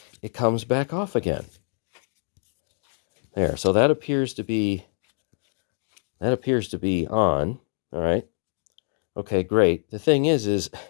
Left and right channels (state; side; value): silent; right; digital silence